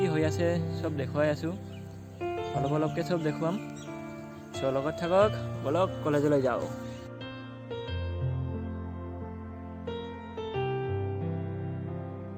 হৈ আছে চব দেখুৱাই আছোঁ, অলপকৈ চব দেখুৱাম। চ' লগত থাকক, বলক কলেজলৈ যাওঁ।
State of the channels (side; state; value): both; identical; correlation 1.00